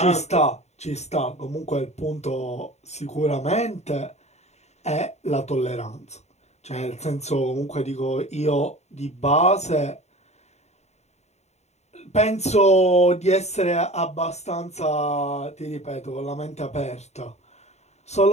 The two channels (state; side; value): late; right; 0.32 ms